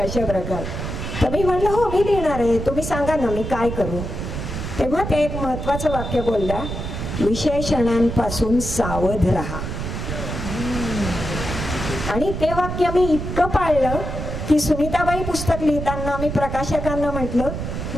प्रकार. तर मी म्हणलं हो मी लिहिणार आहे, तुम्ही सांगा ना मी काय करू. तेव्हा ते एक महत्वाचं वाक्य बोलला, विशेषणांपासून सावध राहा. आणि ते वाक्य मी इतकं पाळलं की सुनीताबाई पुस्तक लिहिताना मी प्रकाशकांना म्हटलं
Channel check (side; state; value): right; noise; rumble, 5 dB below the sound